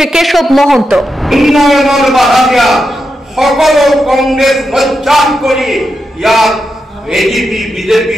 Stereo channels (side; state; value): both; normal; correlation 0.87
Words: কেশব মহন্ত। উন্নয়নের বাধা দিয়া সকল কংগ্রেস মজ্জান করি ইয়াত এজিপি